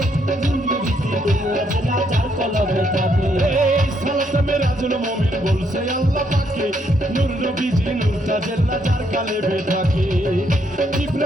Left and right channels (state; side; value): normal; both; correlation 0.73